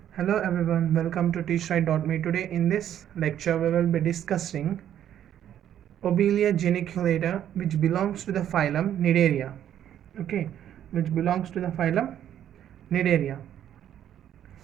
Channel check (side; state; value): left; quieter; 10.5 dB